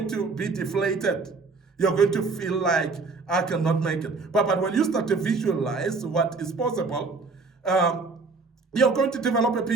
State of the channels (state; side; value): quieter; left; 4.1 dB